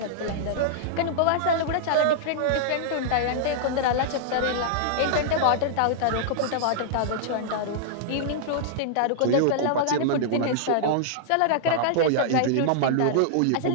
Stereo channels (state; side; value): different; both; correlation -0.01